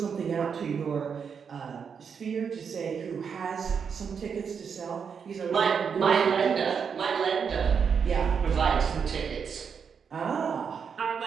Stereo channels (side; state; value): left; quieter; 6.6 dB